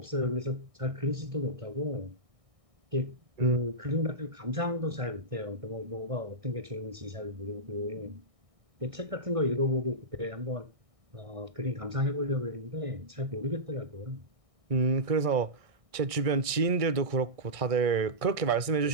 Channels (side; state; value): left; late; 1.6 ms